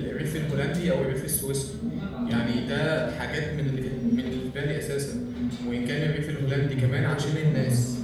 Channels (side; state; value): both; identical; correlation 1.00